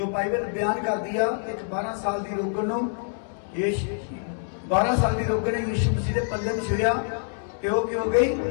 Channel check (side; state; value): right; silent; digital silence